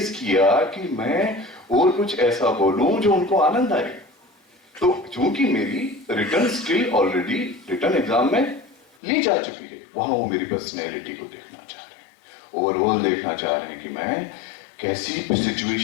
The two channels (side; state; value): right; drops out; at 8.9 s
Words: किया कि मैं और कुछ ऐसा बोलूं जो उनको आनंद आए। तो चूंकि मेरी return skill already return exam में ली जा चुकी है, वहां वो मेरी पर्सनैलिटी को देखना चाह रहे हैं, ओवरऑल देखना चाह रहे हैं कि मैं कैसी